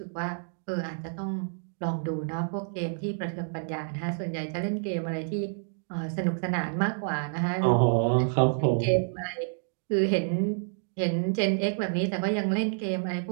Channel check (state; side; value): silent; left; digital silence